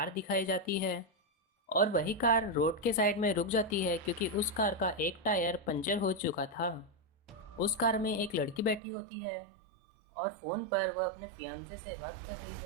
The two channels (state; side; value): drops out; left; at 8.8 s